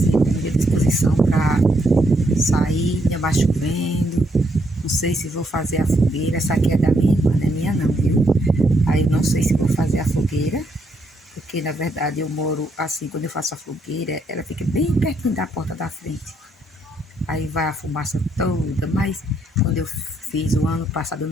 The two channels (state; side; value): normal; both; correlation 0.74